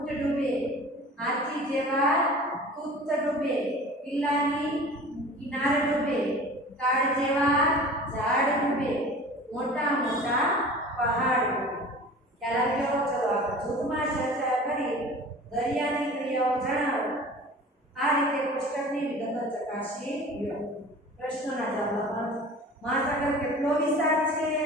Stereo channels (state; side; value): normal; both; correlation 0.41